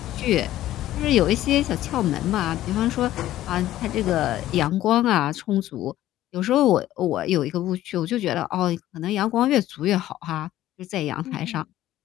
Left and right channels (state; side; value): quieter; right; 14.0 dB